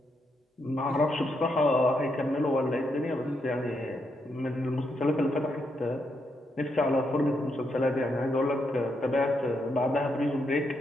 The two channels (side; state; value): both; normal; correlation 0.80